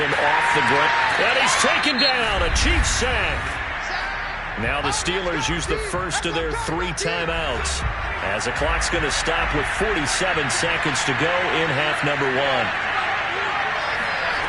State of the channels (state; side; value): identical; both; correlation 1.00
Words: off the ground. And he's taken down, a Chiefs sack. Now the Steelers use the first of their 3 timeouts as the clock's going to stop with 47 seconds to go in half number 1.